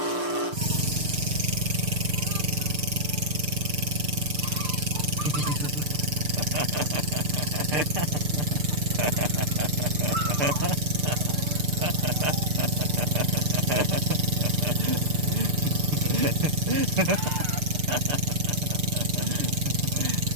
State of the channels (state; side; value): late; left; 6.7 ms